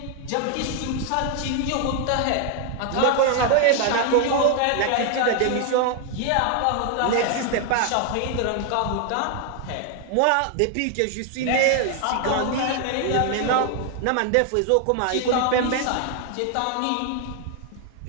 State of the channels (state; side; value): different; both; correlation 0.00